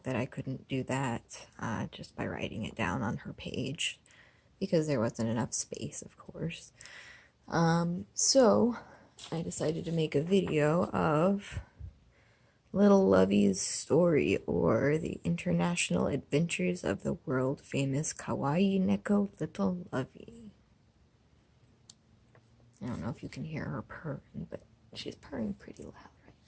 that I couldn't do that just by writing it down on her page because there wasn't enough space, of course. So I decided to make a video of Little Lovey's story, or the international adventures of the world famous Kawaii Neko Little Lovey. I don't know if you can hear her purring, but she's purring pretty loud right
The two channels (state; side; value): identical; both; correlation 1.00